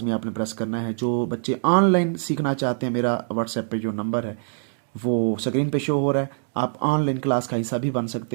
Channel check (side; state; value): left; silent; digital silence